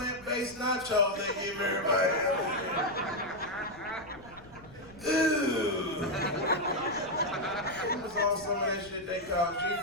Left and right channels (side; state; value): left; noise; rumble, 22 dB below the sound